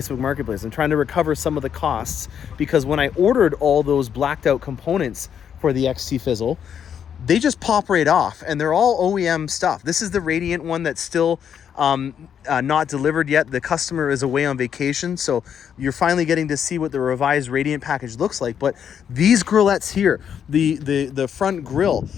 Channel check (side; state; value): right; quieter; 8.3 dB